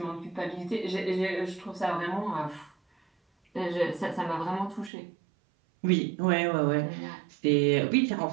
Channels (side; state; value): left; drops out; at 4.9 s